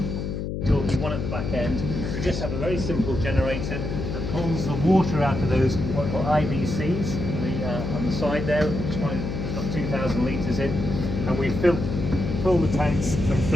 Talking one at the back end, we just have a very simple generator that pulls the water out of those what are called IBCs on the side there, which one has got 2,000 litres in, and we fill the tanks from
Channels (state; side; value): noise; left; hum, 4 dB below the sound